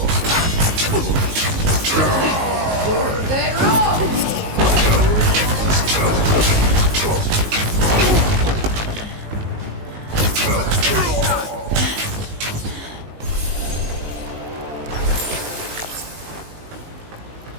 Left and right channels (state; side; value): late; left; 19 ms